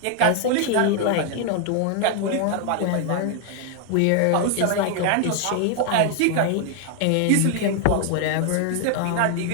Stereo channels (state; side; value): different; both; correlation 0.00